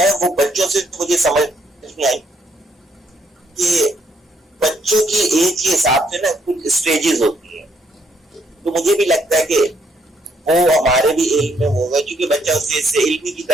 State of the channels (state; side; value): normal; both; correlation 0.71